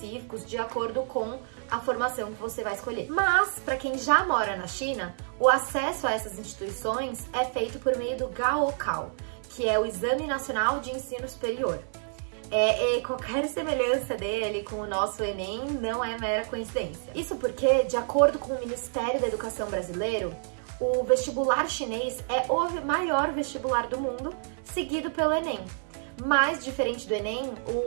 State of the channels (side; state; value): left; silent; 58 dB below the other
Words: de acordo com a formação que você vai escolher. Mas, para quem já mora na China, o acesso a essas instituições é feito por meio do Gaokao, que é o Exame Nacional de Ensino Superior. Qualquer semelhança dele com o nosso Enem não é mera coincidência. Isso porque, de acordo com o Ministério da Educação brasileiro, o vestibular chinês é o maior vestibular do mundo, seguido pelo Enem. Mas, diferente do Enem,